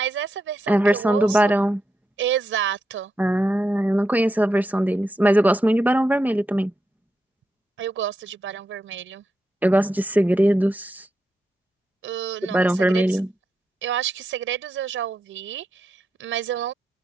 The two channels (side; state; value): both; normal; correlation 0.84